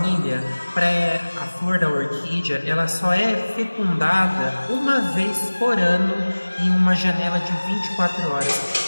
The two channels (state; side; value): inverted; both; correlation -1.00